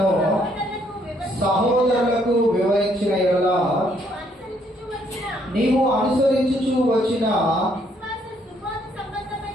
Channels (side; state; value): both; normal; correlation 0.69